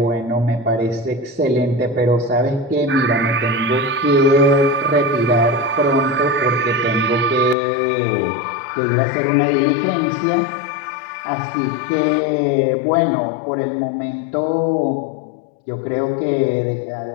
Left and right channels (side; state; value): right; drops out; at 7.6 s